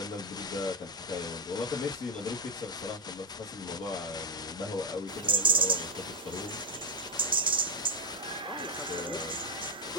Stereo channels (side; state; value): both; normal; correlation 0.04